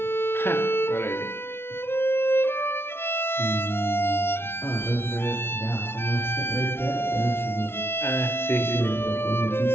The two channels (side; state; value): right; late; 0.12 ms